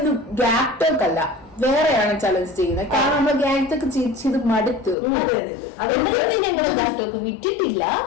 ഗ്യാപ് ടോക്ക് അല്ല, വേറെയാണ് ചലഞ്ച് ചെയ്യുന്നത്. കാരണം നമ്മൾ ഗ്യാപ് ടോക്ക് ചെയ്ത് മടുത്തു. അതുകൊണ്ട് ഞങ്ങൾ ഗ്യാപ് ടോക്ക് വിറ്റിട്ടില്ല.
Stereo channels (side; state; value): right; drops out; at 5.0 s